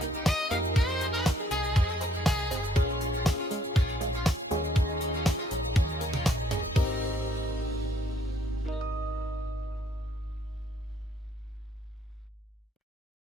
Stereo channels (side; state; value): both; normal; correlation 0.64